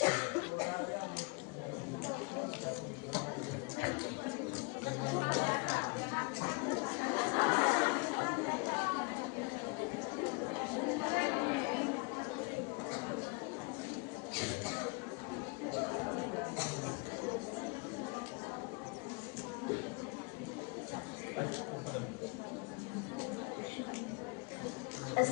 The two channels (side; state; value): right; quieter; 30.8 dB